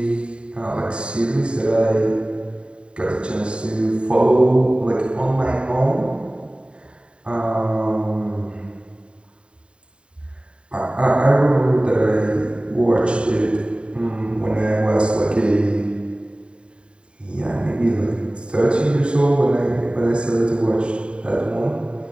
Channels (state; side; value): late; left; 0.053 ms